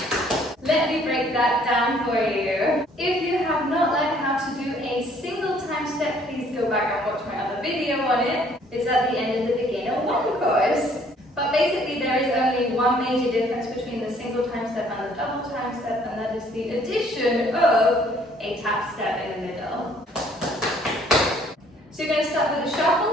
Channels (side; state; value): both; normal; correlation 0.61